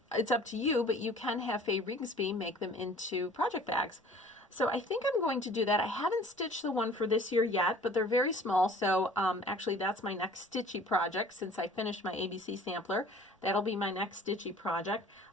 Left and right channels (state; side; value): normal; both; correlation 0.49